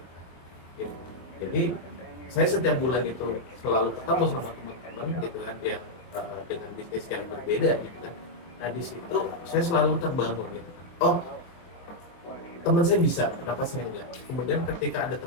gitu. Jadi saya setiap bulan itu selalu ketemu sama teman-teman gitu kan yang dengan bisnis yang berbeda gitu kan. Nah di situ saya selalu terbangun gitu kan. Oh, teman saya bisa, kenapa saya enggak? Kemudian ketika ada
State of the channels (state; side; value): late; right; 23 ms